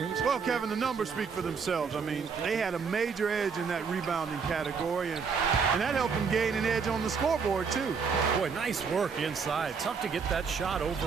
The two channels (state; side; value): quieter; left; 5.7 dB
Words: Well, Kevin, the numbers speak for themselves. I mean, they had a major edge in that rebounding category, and that helped them gain an edge on the scoreboard, too. Boy, nice work inside. Tough to get that shot